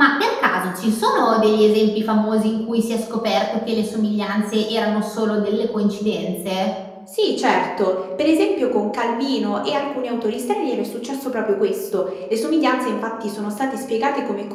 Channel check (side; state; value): both; identical; correlation 1.00